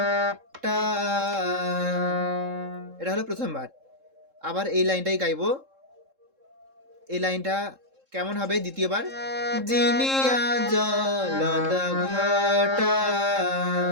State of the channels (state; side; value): late; left; 3.7 ms